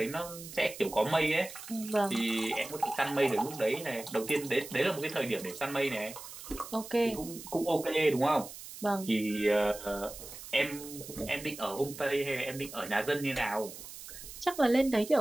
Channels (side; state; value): right; noise; hiss, 13 dB below the sound